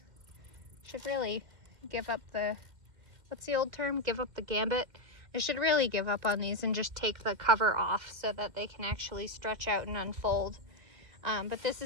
Should really give up the, what's the old term? Give up the gambit. I should really give up on these and just take the cover off so that they can actually stretch out and unfold. But this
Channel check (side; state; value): left; late; 2.1 ms